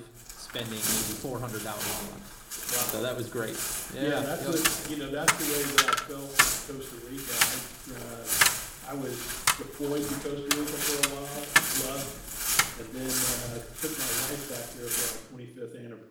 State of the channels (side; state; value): both; identical; correlation 1.00